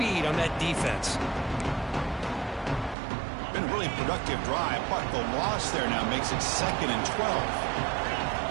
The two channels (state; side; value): drops out; left; at 3.0 s